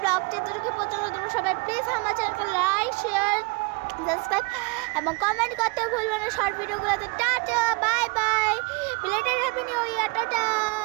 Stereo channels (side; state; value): left; quieter; 30.5 dB